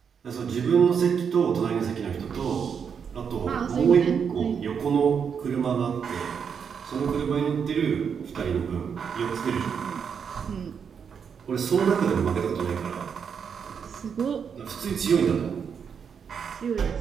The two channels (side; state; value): left; quieter; 6.9 dB